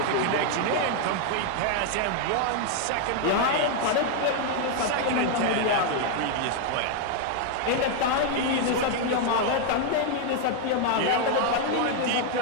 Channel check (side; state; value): both; different; correlation 0.00